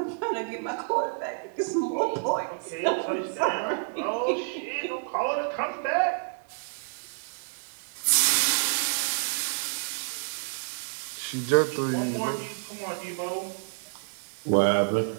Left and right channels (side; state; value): left; silent; digital silence